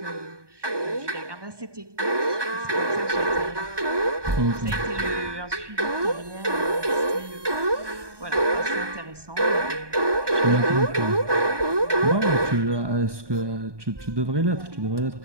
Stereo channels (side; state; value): left; late; 1.2 ms